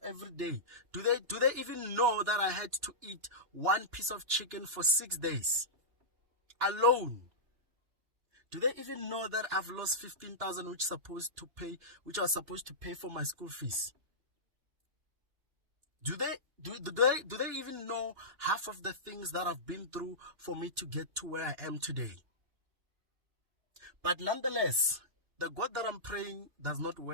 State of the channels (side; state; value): left; late; 2.9 ms